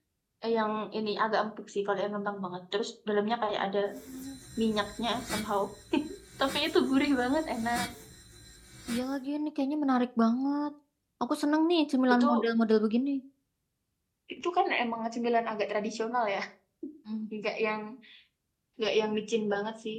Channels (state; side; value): identical; both; correlation 1.00